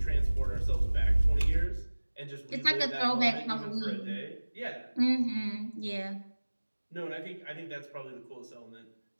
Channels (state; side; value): inverted; both; correlation -1.00